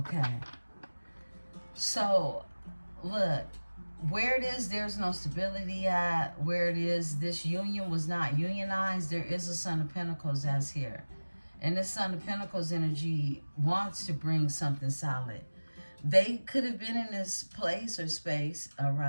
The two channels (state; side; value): inverted; both; correlation -1.00